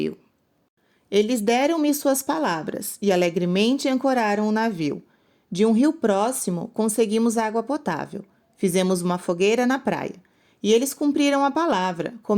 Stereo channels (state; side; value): identical; both; correlation 1.00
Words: Eles deram-me suas palavras e alegremente ancoraram o navio. De um rio próximo, conseguimos água potável. Fizemos uma fogueira na praia. E eles cumpriram a palavra,